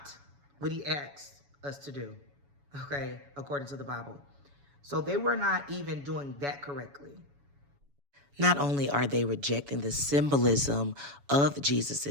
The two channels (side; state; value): left; late; 7.1 ms